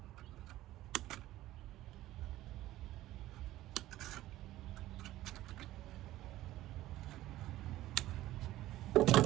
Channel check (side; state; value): left; quieter; 15.4 dB